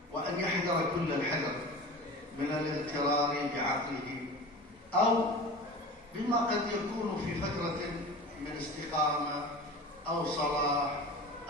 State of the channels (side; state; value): both; normal; correlation 0.35